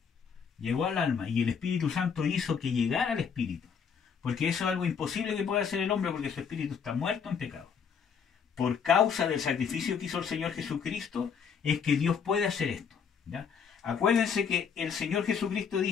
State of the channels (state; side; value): quieter; right; 6.6 dB